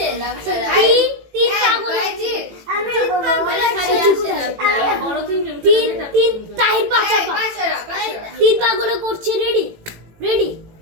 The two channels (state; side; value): late; left; 18 ms